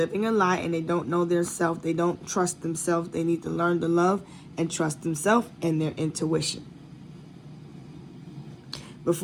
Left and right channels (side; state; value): both; identical; correlation 1.00